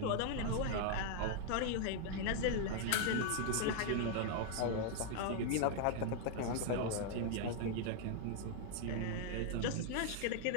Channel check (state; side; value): different; both; correlation -0.01